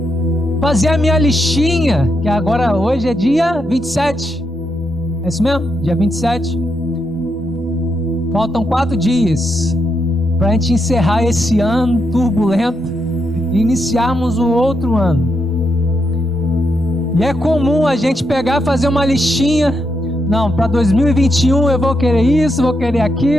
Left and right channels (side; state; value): both; normal; correlation 0.81